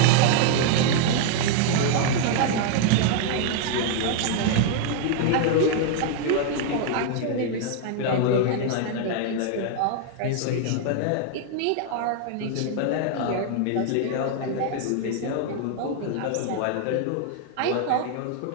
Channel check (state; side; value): different; both; correlation 0.00